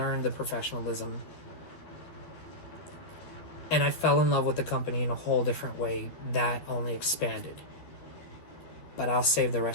the professionalism. And I fell in love with the company in a whole different way that only expanded. But I'll save the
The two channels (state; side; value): late; right; 12 ms